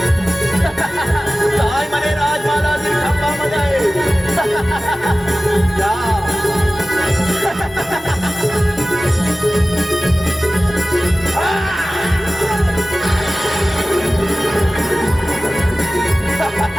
काय म्हणे राजमालातील खांबामध्ये आहे.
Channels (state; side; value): normal; both; correlation 0.96